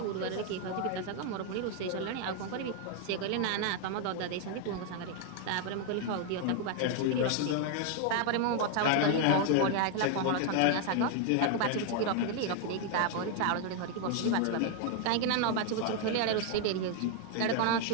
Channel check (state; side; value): different; both; correlation 0.00